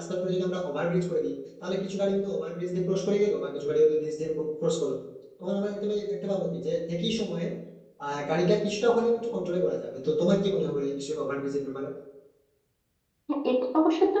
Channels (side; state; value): both; identical; correlation 1.00